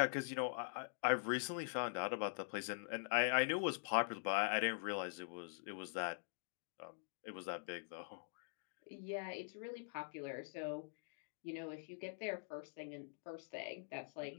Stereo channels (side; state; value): right; silent; digital silence